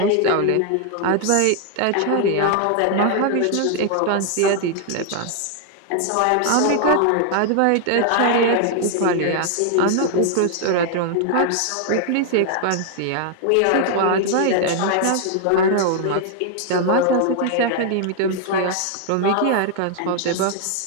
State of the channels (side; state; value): both; different; correlation 0.00